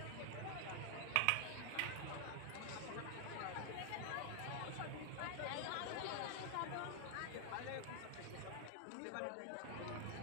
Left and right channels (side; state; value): both; different; correlation 0.00